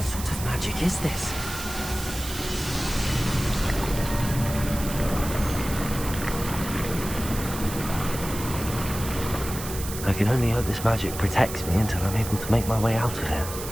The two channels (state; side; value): noise; right; hiss, 9 dB below the sound